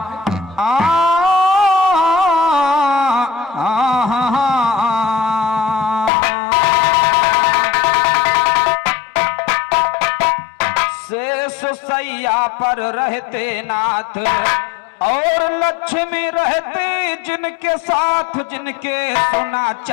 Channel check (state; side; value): drops out; right; at 6.1 s